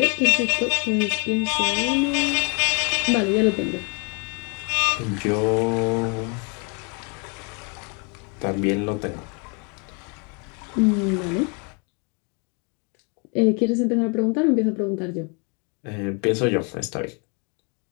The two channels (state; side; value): quieter; right; 34.9 dB